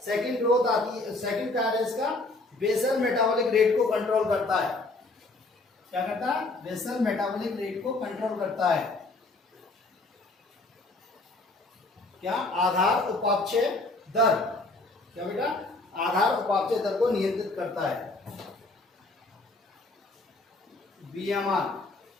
सेकंड ग्रोथ आती है, सेकंड क्या है इसका? बेसल मेटाबॉलिक रेट को कंट्रोल करता है। क्या करता है? बेसल मेटाबॉलिक रेट को कंट्रोल करता है। क्या? आधार उपापचय दर। क्या बेटा? आधार उपापचय दर को नियंत्रित करता है। BMR,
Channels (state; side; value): quieter; right; 3.1 dB